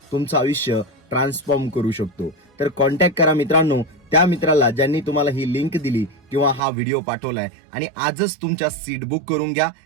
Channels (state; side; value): drops out; left; at 6.6 s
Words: तुमचं आयुष्य ट्रान्सफॉर्म करू शकतो. तर कॉन्टॅक्ट करा मित्रांनो त्या मित्राला ज्यांनी तुम्हाला ही लिंक दिली किंवा हा व्हिडिओ पाठवलाय, आणि आजच तुमच्या सीट बुक करून घ्या,